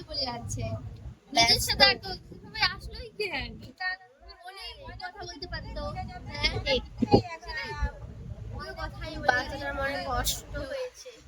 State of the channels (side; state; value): both; identical; correlation 1.00